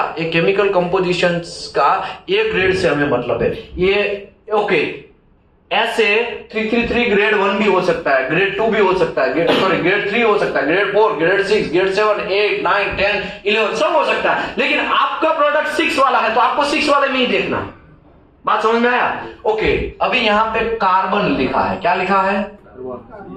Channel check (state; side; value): identical; both; correlation 1.00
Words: ये केमिकल कंपोजिशन का A ग्रेड से हमें मतलब है। ये ओके, ऐसे 333 ग्रेड 1 भी हो सकता है, ग्रेड 2 भी हो सकता है, ग्रेड 3 हो सकता है, ग्रेड 4, ग्रेड 6, ग्रेड 7, 8, 9, 10, 11 सब हो सकता है। लेकिन आपका प्रोडक्ट 6 वाला है तो आपको 6 वाले में ही देखना है। बात समझ में आया। ओके, अभी यहां पे कार्बन लिखा है, क्या लिखा है,